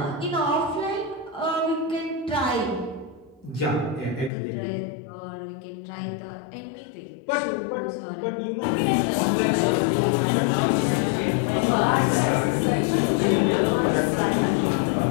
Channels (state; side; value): drops out; right; at 4.3 s